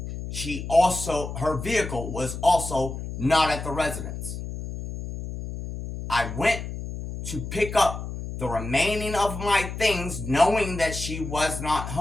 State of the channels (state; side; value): noise; left; hum, 7 dB below the sound